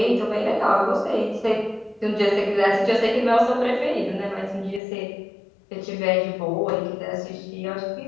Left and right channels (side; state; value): right; drops out; at 4.8 s